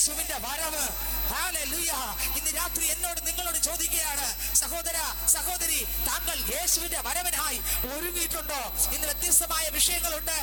വരവ്. ഹല്ലേലൂയ. ഇന്ന് രാത്രി എന്നോട് നിങ്ങളോട് ചോദിക്കുകയാണ്, സഹോദര സഹോദരി, താങ്കൾ യേശുവിന്റെ വരവിനായി ഒരുങ്ങിയിട്ടുണ്ടോ? ഇന്ന് വ്യത്യസ്തമായ വിഷയങ്ങളുണ്ട്,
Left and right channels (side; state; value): both; identical; correlation 1.00